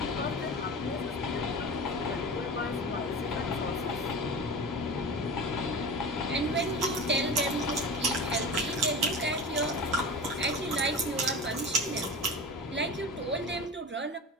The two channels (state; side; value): normal; both; correlation 0.31